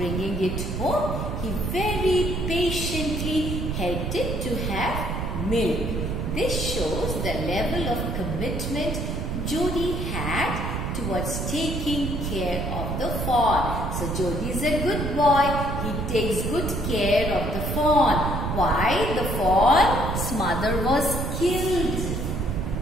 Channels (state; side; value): noise; right; rumble, 3 dB below the sound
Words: it home, he very patiently helped it to have milk. This shows the level of commitment Jody had towards taking care of the fawn. So Jody is a good boy. He takes good care of the fawn. Why? The fawn's mother was killed.